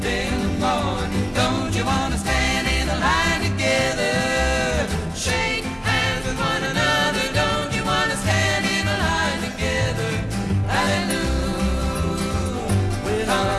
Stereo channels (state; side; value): identical; both; correlation 1.00